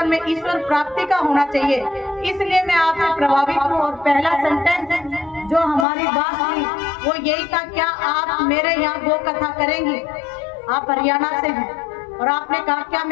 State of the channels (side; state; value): right; drops out; at 5.9 s